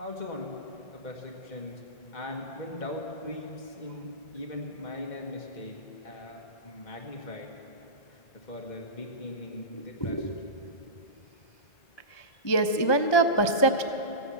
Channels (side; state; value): right; late; 1.3 ms